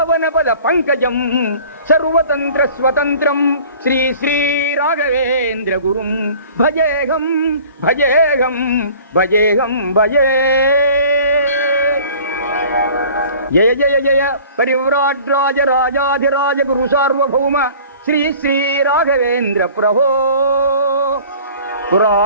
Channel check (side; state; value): both; inverted; correlation -0.47